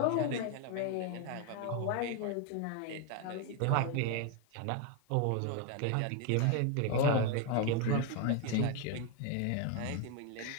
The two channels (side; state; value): both; different; correlation 0.01